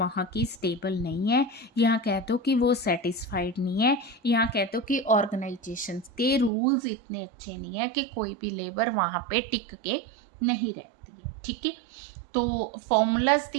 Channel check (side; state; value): left; drops out; at 6.5 s